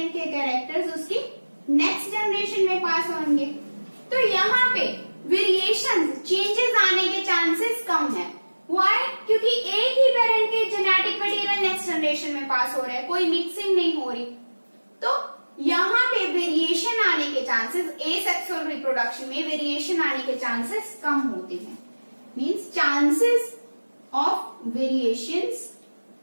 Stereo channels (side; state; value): both; inverted; correlation -1.00